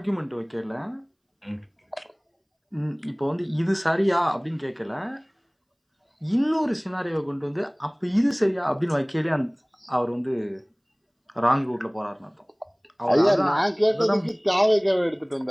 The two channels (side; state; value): both; identical; correlation 1.00